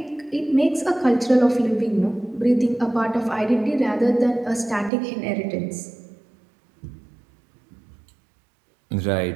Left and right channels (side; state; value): left; drops out; at 4.9 s